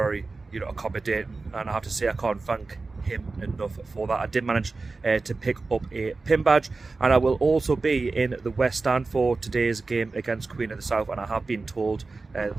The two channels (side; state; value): left; quieter; 3.8 dB